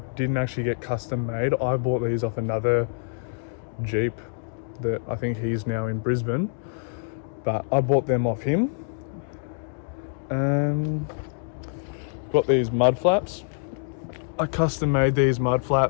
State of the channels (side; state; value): right; silent; digital silence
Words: actually get custom made. I bought these off another Jeep that I think he's now in Brisbane, but I bought them off him. Got these mud flaps. I custom made these mud